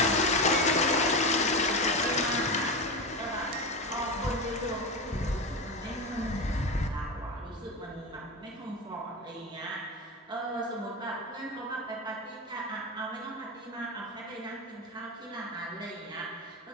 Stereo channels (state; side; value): normal; both; correlation 0.19